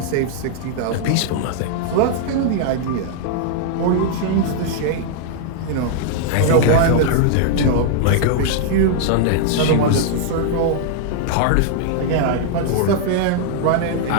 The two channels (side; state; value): both; different; correlation -0.01